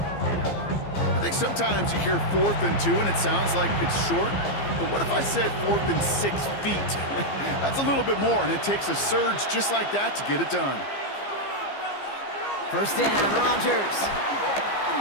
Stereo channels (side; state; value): right; late; 15 ms